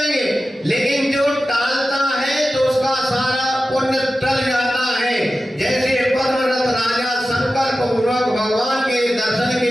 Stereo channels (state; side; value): normal; both; correlation 0.94